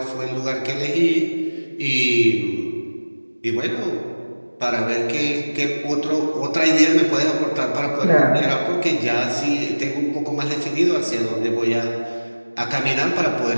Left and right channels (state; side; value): inverted; both; correlation -1.00